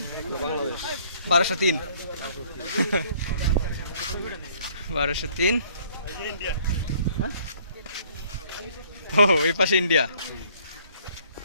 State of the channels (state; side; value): inverted; both; correlation -0.60